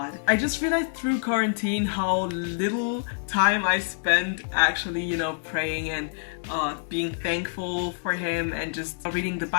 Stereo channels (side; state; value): right; silent; digital silence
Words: I just realized through quarantine how little time I spent actually, you know, praying and being thankful for Him and just reading the